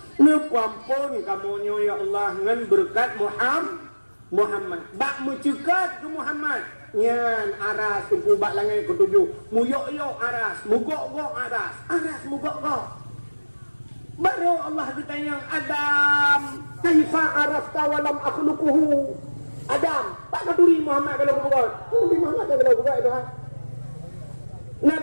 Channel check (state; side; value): inverted; both; correlation -1.00